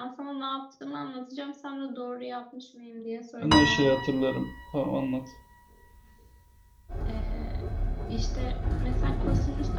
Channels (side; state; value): both; identical; correlation 1.00